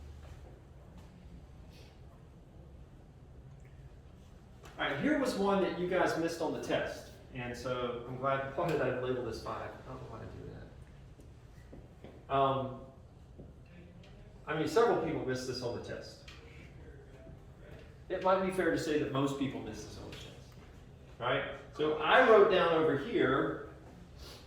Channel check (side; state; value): both; identical; correlation 1.00